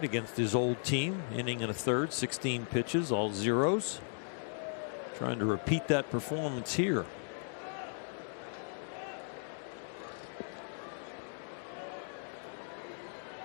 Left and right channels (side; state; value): right; silent; digital silence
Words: against his old team. Inning and a third, 16 pitches, all zeros. Trying to repeat that performance here.